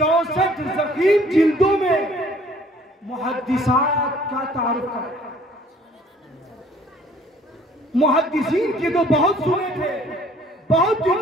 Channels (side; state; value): both; normal; correlation 0.57